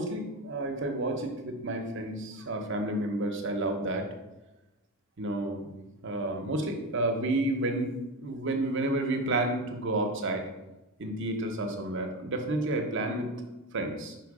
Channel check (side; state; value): both; normal; correlation 0.20